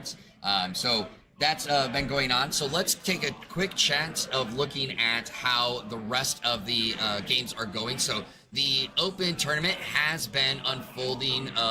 So that's been going on. So let's take a quick chance of looking at how the rest of the games are going. So the Open tournament has been unfolding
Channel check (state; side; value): identical; both; correlation 1.00